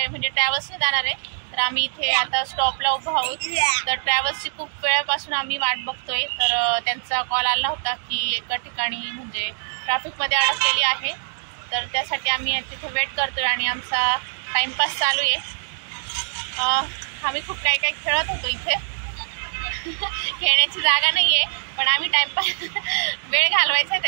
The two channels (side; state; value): left; silent; digital silence